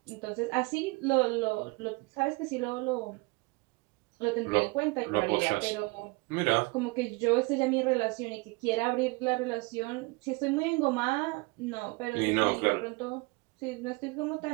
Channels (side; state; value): left; quieter; 26.3 dB